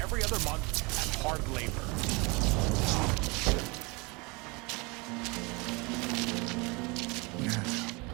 every other month at hard labor.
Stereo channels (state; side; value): quieter; left; 27.6 dB